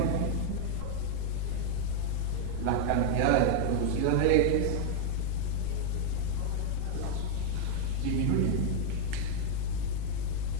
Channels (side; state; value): both; different; correlation 0.00